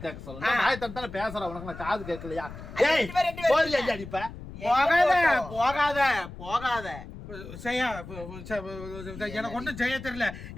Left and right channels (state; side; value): noise; left; rumble, 13 dB below the sound